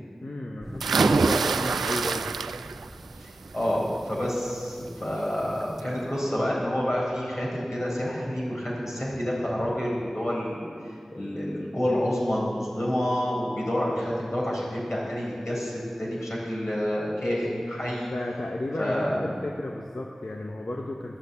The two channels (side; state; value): both; normal; correlation 0.93